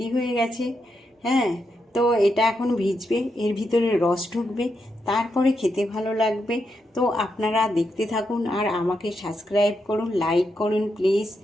হয়ে গেছে। হ্যাঁ, তো এটা এখন ভিজবে, এর ভিতরে রস ঢুকবে, তারপরে খেতে ভালো লাগবে। তো আপনারা দেখতে থাকুন আর আমাকে সাবস্ক্রাইব করুন, লাইক করুন প্লিজ,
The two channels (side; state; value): both; normal; correlation 0.83